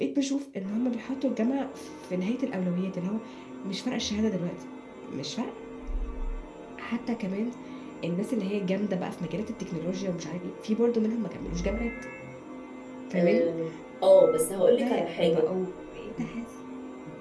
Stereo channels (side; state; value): both; identical; correlation 1.00